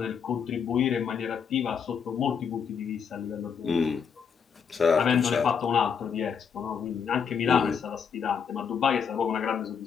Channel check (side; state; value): right; quieter; 6.8 dB